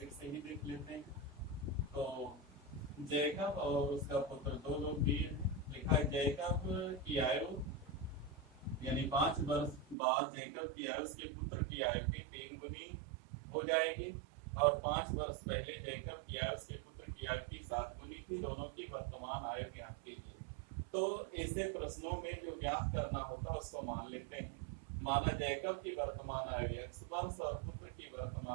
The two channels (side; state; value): left; drops out; at 10.0 s